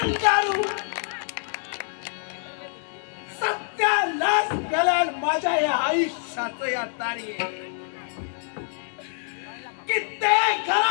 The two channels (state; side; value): silent; right; digital silence